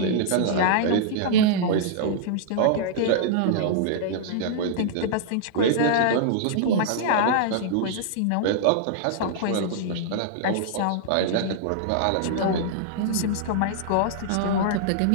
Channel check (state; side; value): different; both; correlation -0.01